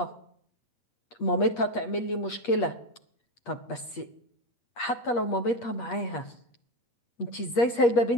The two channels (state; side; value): late; right; 8.4 ms